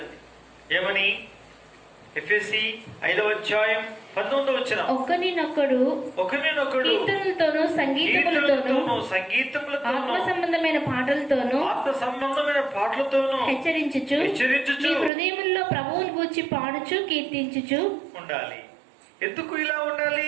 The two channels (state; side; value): drops out; left; at 15.1 s